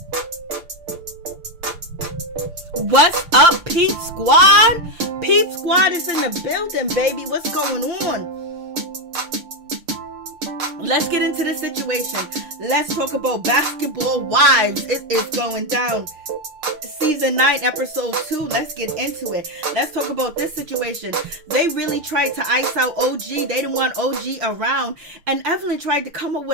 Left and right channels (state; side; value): late; left; 6.6 ms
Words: up, Peep Squad? Peep Squad is in the building, baby. What's going on? Let's get into the situation. Let's talk about Basketball Wives. It is going down. Season 9, episode 2. Let's get into it. Let's talk about this situation. They really tried to ice out OG. They didn't want OG around. And Evelyn tried to come up